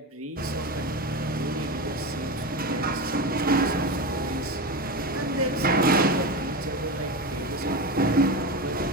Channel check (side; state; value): both; normal; correlation 0.21